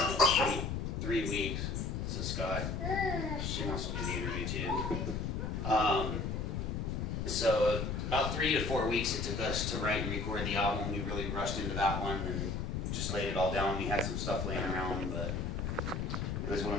three weeks. So Scott, she wants to do the interview too. So about 3 to 4 weeks it took us to write and record the album. We really rushed into that one and just laid it all down. We had some stuff laying around, but it was one of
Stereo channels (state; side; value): noise; left; rumble, 2 dB below the sound